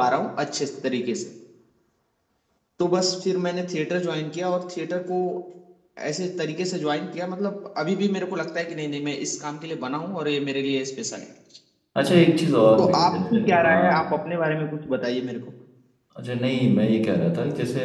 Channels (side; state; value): both; identical; correlation 1.00